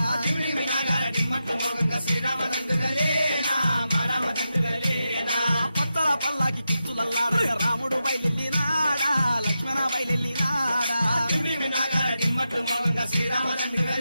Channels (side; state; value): both; inverted; correlation -0.89